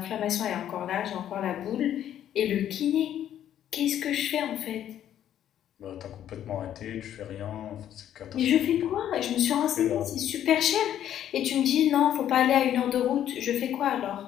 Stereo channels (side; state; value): right; quieter; 10.8 dB